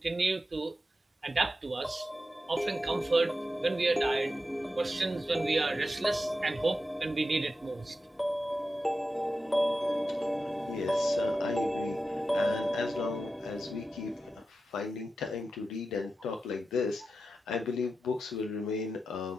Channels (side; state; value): both; normal; correlation 0.91